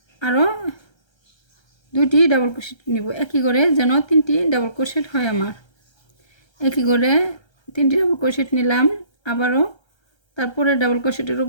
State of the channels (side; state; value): right; late; 1.3 ms